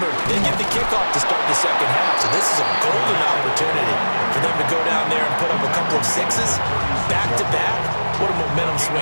they get the kickoff to start the second half, so this is a golden opportunity for them to go down there and put up a couple of sixes back-to-back. What a momentum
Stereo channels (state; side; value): inverted; both; correlation -1.00